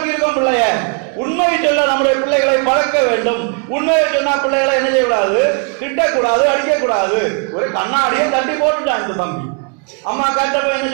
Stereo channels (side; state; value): left; quieter; 37.4 dB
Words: இருக்கோம் பிள்ளைய. உண்மையை சொல்ல நம்முடைய பிள்ளைகளை பழக்க வேண்டும். உண்மையை சொன்னா பிள்ளைகளை என்ன செய்யக்கூடாது? திட்டக்கூடாது, அடிக்கக்கூடாது. ஒரு கண்ணாடியை தட்டி போட்டுட்டான் இந்த தம்பி. அம்மா கேட்டப்ப என்ன